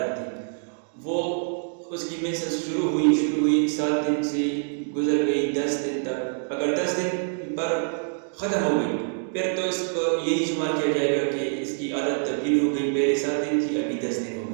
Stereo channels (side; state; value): left; silent; digital silence